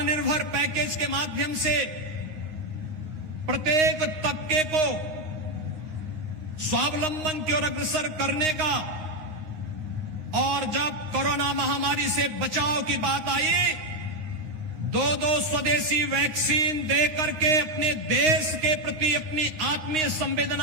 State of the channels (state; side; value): late; left; 9.7 ms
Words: पैकेज के माध्यम से प्रत्येक तबके को स्वावलंबन की ओर अग्रसर करने का, और जब कोरोना महामारी से बचाव की बात आई, दो स्वदेशी वैक्सीन दे करके अपने देश के प्रति अपनी आत्मीय